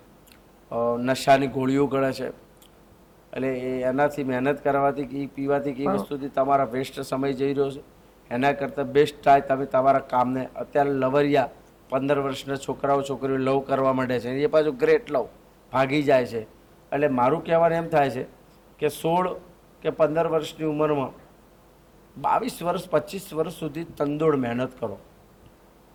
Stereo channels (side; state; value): both; identical; correlation 1.00